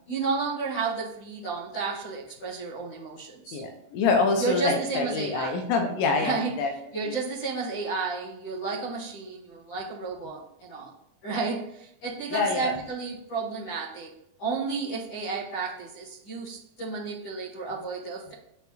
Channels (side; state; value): right; late; 22 ms